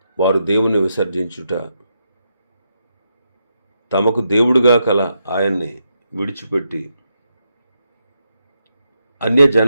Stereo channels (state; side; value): inverted; both; correlation -0.83